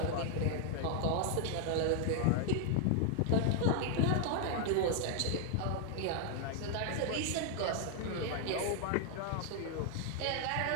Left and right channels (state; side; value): different; both; correlation 0.00